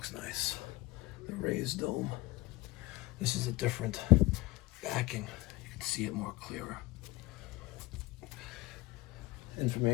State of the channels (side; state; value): right; quieter; 20.1 dB